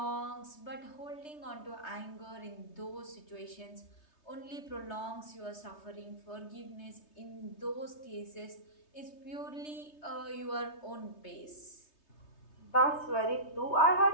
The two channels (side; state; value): right; late; 3.2 ms